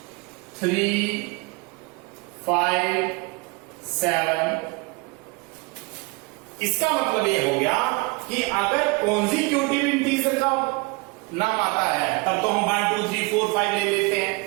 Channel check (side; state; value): left; quieter; 27.1 dB